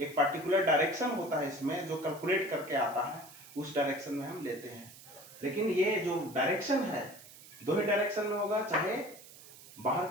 एक पर्टिकुलर डायरेक्शन होता है इसमें जो कैलकुलेट करके आता है, उस डायरेक्शन में हम लेते हैं। लेकिन ये जो डायरेक्शन है दो ही डायरेक्शन में होगा, चाहे बाहर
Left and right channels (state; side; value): noise; right; hiss, 19 dB below the sound